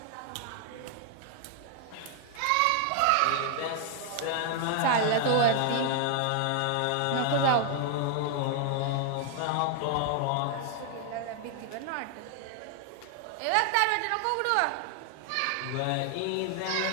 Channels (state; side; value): different; both; correlation 0.00